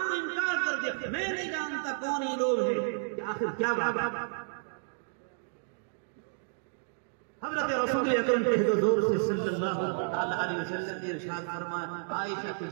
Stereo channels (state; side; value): silent; left; digital silence